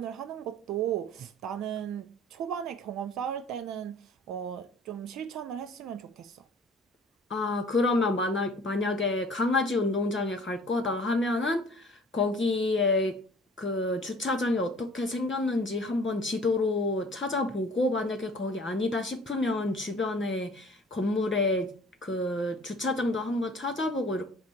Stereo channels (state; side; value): normal; both; correlation 0.49